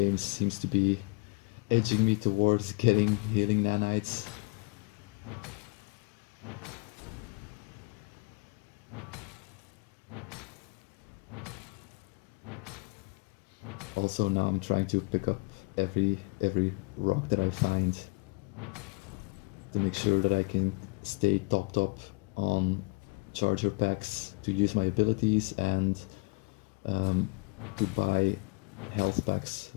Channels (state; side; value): quieter; right; 29.2 dB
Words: seems to be edging me towards getting healing nanites. Also now I'm trying to pick up every rock that I find to make sure that I can stay topped up on charger packs to use my abilities and to buy health packs